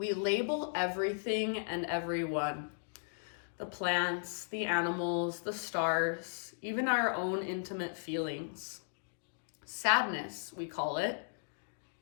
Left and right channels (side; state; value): right; silent; digital silence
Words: label everything and everyone. The plants, the animals, the stars, even our own intimate feelings. Sadness, we call it.